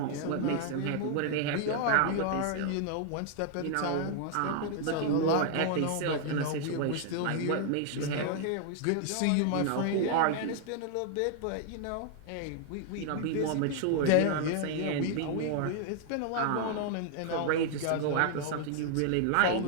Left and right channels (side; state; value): both; different; correlation 0.00